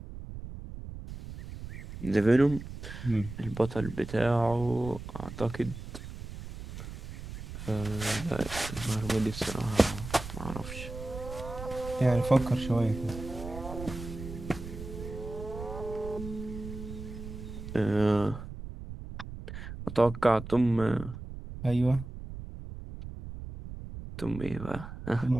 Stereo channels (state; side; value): noise; right; rumble, 10 dB below the sound